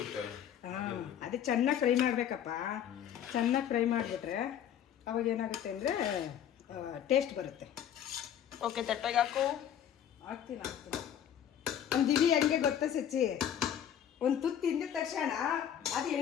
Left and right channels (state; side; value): quieter; right; 9.7 dB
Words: ಹಾಂ, ಅದೇ ಚೆನ್ನಾಗಿ ಫ್ರೈ ಮಾಡಬೇಕಪ್ಪ. ಚೆನ್ನಾಗಿ ಫ್ರೈ ಮಾಡಿಬಿಟ್ರೆ ಅವಾಗ ಏನಾಗುತ್ತೆ ಅಂದರೆ ಟೇಸ್ಟ್ ಬರುತ್ತೆ. ಓಕೆ ತಟ್ಟೆಗೆ ಹಾಕು. ಹಾಕ್ತೀನಿ. ಒಂದು ದಿವಿ ಹೆಂಗೆ ಗೊತ್ತಾ ಸಚ್ಚಿ, ಒಂದು ತುತ್ತು ತಿಂದ ತಕ್ಷಣ ಅದು